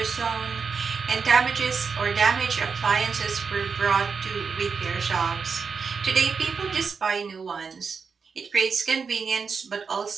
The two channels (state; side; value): quieter; left; 5.5 dB